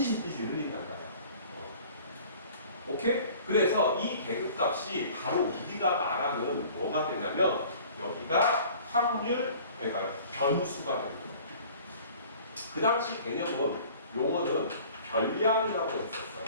흘린단다. 오케이? 그래서 이 계급값이 바로 우리가 말하는 뭐가 되냐면 여기가 확률, 그러니까 변수가 되는 거예요. 그 당시 개념은 용어는 별량이라고 했었어요.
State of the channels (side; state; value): both; inverted; correlation -0.48